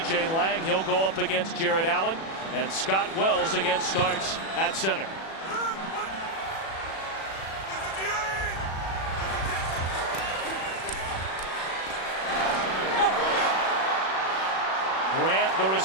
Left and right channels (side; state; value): right; late; 36 ms